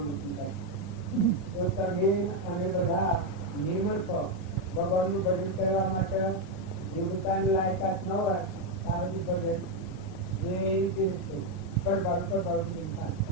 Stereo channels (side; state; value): right; late; 37 ms